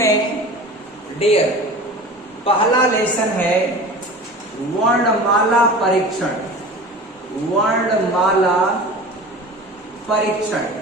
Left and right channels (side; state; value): both; normal; correlation 0.37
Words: डियर पहला लेसन है वर्णमाला परीक्षण। वर्णमाला परीक्षण